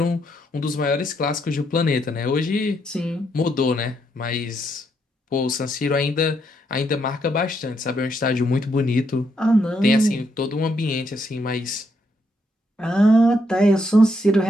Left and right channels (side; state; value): both; normal; correlation 0.76